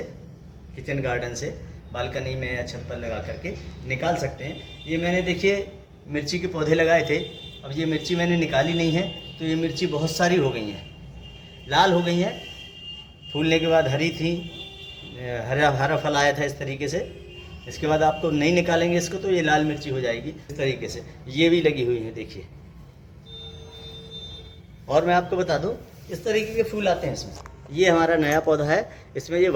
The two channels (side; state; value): both; identical; correlation 1.00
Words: किचन गार्डन से बालकनी में या छत पर लगा करके निकाल सकते हैं। ये मैंने देखिए मिर्ची के पौधे लगाए थे। अब ये मिर्ची मैंने निकाली नहीं है तो ये मिर्ची बहुत सारी हो गई हैं, लाल हो गई हैं। फूलने के बाद हरी थी, हरा हरा फल आया था इस तरीके से। इसके बाद आपको नहीं निकालेंगे इसको तो ये लाल मिर्ची हो जाएगी इस तरीके से। ये भी लगी हुई है देखिए। और मैं आपको बता दूं, इस तरीके के फूल आते हैं इसमें। ये हमारा नया पौधा है, इसमें ये